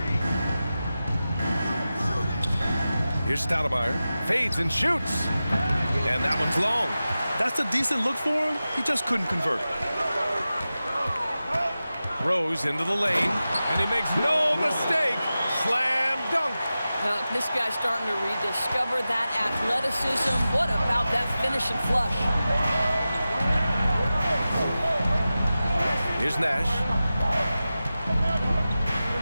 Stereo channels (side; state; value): both; inverted; correlation -0.94